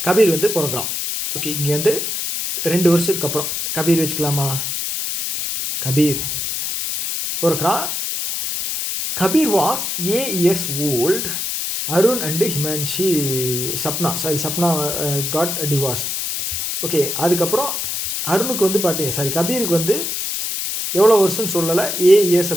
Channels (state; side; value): noise; left; hiss, 3 dB below the sound